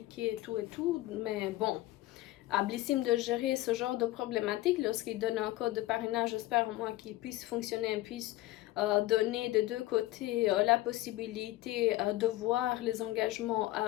tout. Mais bon. À Blissim de gérer ce genre de problématique lorsqu'il donne un code de parrainage. J'espère au moins qu'il puisse fonctionner, puisse donner de deux côtés la possibilité de voir les engagements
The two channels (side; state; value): right; quieter; 16.9 dB